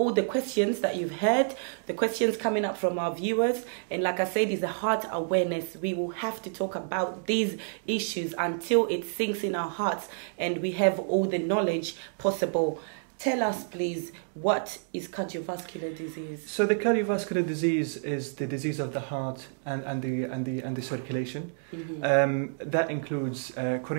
the questions that you've heard, the questions coming up from our viewers. And like I said, it's a heart awareness. We will have to talk about these issues until it sinks in our hearts and we have all the knowledge possible. Tell us, please, what is cardiovascular disease? So the cardiovascular disease is the disease of the heart and the circulation. That includes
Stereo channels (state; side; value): silent; left; digital silence